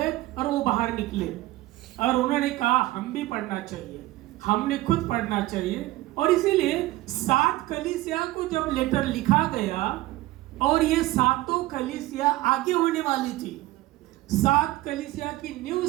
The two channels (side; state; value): left; quieter; 17.4 dB